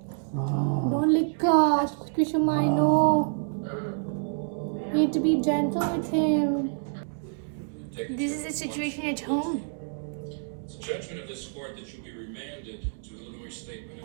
Don't lick Kushuma, I know. You need to be gentle with him. This is the situation at home. It's a judgment of this court that you be remanded to Illinois State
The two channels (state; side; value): silent; left; digital silence